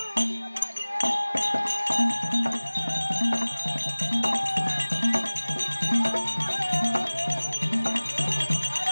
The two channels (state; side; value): inverted; both; correlation -1.00